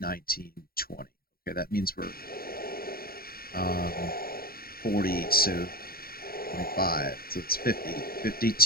20. Okay, that means we're 40, so 25, so it's 50,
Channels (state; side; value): late; right; 0.43 ms